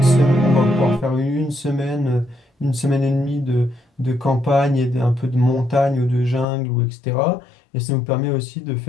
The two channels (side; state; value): right; drops out; at 6.5 s